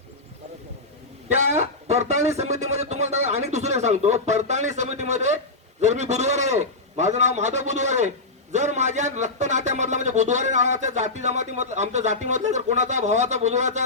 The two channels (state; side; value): quieter; right; 3.0 dB